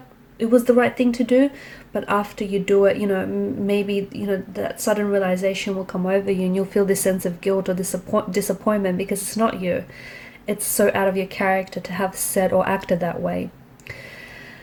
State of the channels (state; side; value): identical; both; correlation 1.00